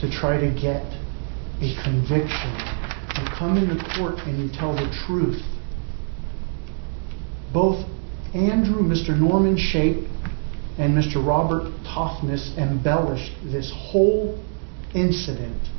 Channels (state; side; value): silent; left; 63 dB below the other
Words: try to get a conviction. You come into court and you tell the truth. Both Andrew, Mr. Norman Shape, and Mr. Robert Toughness embellished this whole incident.